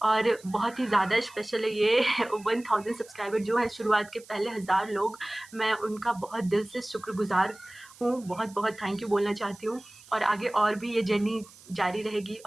और बहुत ही ज़्यादा स्पेशल है ये 1000 सब्सक्राइबर जो है शुरुआत के पहले 1000 लोग, मैं उनका बहुत दिल से शुक्रगुज़ार हूँ। बहुत बहुत थैंक यू बोलना चाहती हूँ, और आगे और भी ये जर्नी जारी रहेगी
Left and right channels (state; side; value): noise; right; hiss, 22 dB below the sound